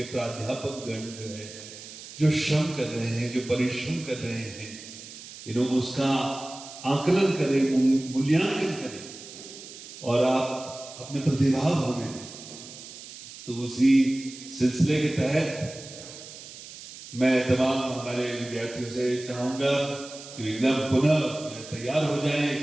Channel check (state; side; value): noise; right; hiss, 15 dB below the sound